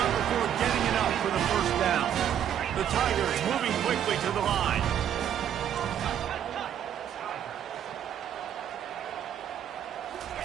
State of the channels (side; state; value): left; quieter; 9.7 dB